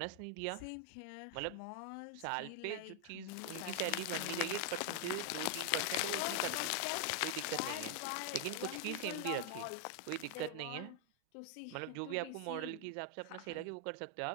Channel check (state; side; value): different; both; correlation 0.00